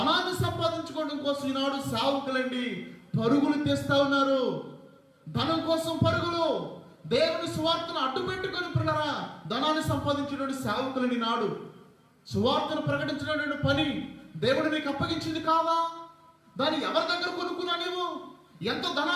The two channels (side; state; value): both; identical; correlation 1.00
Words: సంపాదించుకోవడం కోసం ఈనాడు సేవకులండి పరుగులు తీస్తా ఉన్నారు. ధనం కోసం పరుగులు, దేవుని సువార్తను అడ్డు పెట్టుకొని పిల్లరా ధనాన్ని సంపాదించినటువంటి సేవకులని నాడు సువార్తను ప్రకటించినటువంటి పని దేవుడు నీకు అప్పగించింది కాదా? దాన్ని ఎవరి దగ్గర కొనుక్కున్నా నీవు? ఎంత